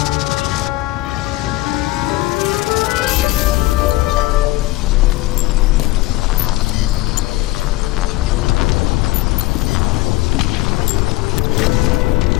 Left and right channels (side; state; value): right; quieter; 18.6 dB